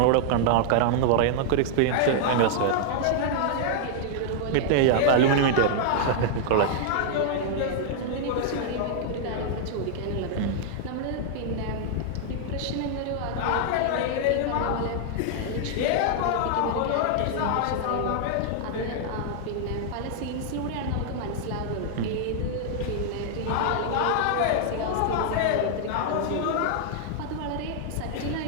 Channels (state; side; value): different; both; correlation -0.01